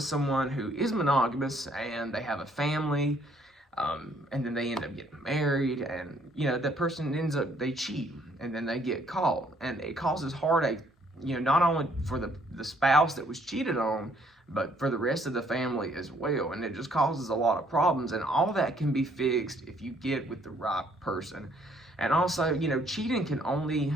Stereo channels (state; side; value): normal; both; correlation 0.65